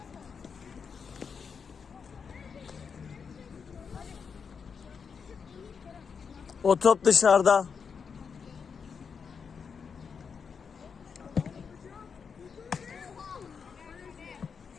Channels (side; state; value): right; quieter; 6.1 dB